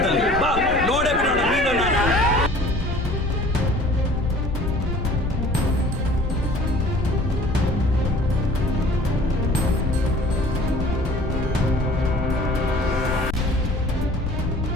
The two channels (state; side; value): noise; left; rumble, 6 dB below the sound